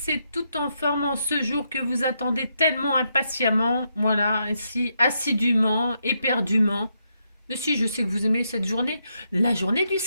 et toutes en forme en ce jour que vous attendez tellement impatiemment, voilà, ainsi assidûment, éperdument. Mais si, je sais que vous aimez cette journée, la journée du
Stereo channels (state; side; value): inverted; both; correlation -0.80